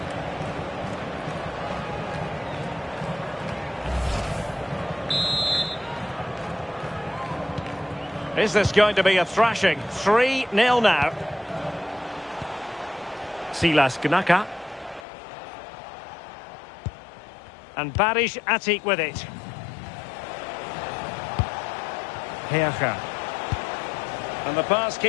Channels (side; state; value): right; drops out; at 15.1 s